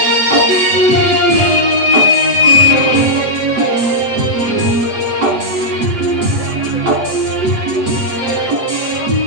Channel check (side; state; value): left; late; 7.8 ms